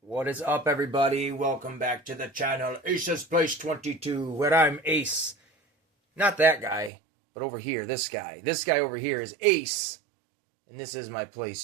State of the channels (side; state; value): left; drops out; at 6.9 s